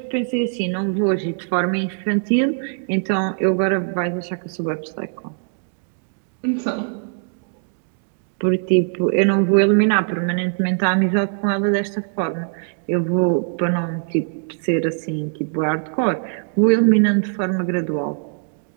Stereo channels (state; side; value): silent; left; digital silence